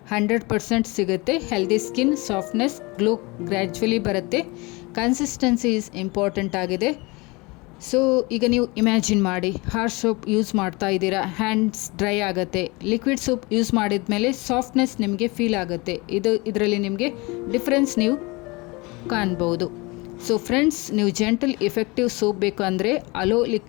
100% ಸಿಗುತ್ತೆ. Healthy skin, softness, glow gradually ಬರುತ್ತೆ. ಕನ್ಸಿಸ್ಟೆನ್ಸಿ ಈಸ್ ಇಂಪಾರ್ಟೆಂಟ್ ಆಗಿದೆ. ಸೊ ಈಗ ನೀವು ಇಮ್ಯಾಜಿನ್ ಮಾಡಿ, ಹಾರ್ಶ್ ಸೋಪ್ ಯೂಸ್ ಮಾಡ್ತಾ ಇದ್ದೀರಾ, ಹ್ಯಾಂಡ್ಸ್ ಡ್ರೈ ಆಗುತ್ತೆ. ಲಿಕ್ವಿಡ್ ಸೋಪ್ ಯೂಸ್ ಮಾಡಿದ ಮೇಲೆ ಸಾಫ್ಟ್ನೆಸ್ ನಿಮಗೆ ಫೀಲ್ ಆಗುತ್ತೆ. ಇದರಲ್ಲಿ ನಿಮಗೆ ಡಿಫ್ರೆನ್ಸ್ ನೀವು ಕಾಣ್ಬೋದು. ಸೊ ಫ್ರೆಂಡ್ಸ್, ನೀವು ಜೆಂಟಲ್ ಎಫೆಕ್ಟಿವ್ ಸೋಪ್ ಬೇಕು ಅಂದರೆ ಅಲೋ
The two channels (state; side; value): quieter; right; 25.4 dB